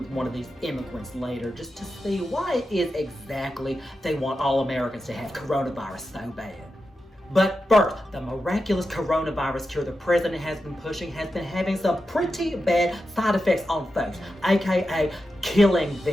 one of these immigrants later just to see why it is exactly they want all Americans to have coronavirus so bad. But first, the miraculous coronavirus cure the president has been pushing has been having some pretty bad side effects on folks, aka killing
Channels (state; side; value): normal; both; correlation 0.90